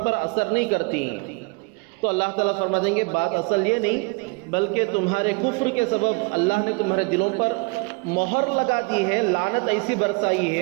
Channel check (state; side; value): quieter; left; 30.9 dB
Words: پر اثر نہیں کرتی۔ تو اللہ تعالیٰ فرما دیں گے بات اصل یہ نہیں، بلکہ تمہارے کفر کے سبب اللہ نے تمہارے دلوں پر مہر لگا دی ہے، لعنت ایسی برسائی